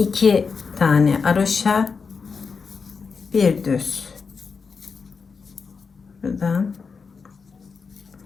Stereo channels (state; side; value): quieter; right; 5.2 dB